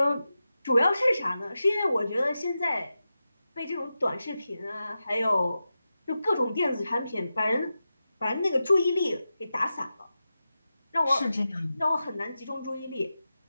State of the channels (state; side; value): inverted; both; correlation -0.92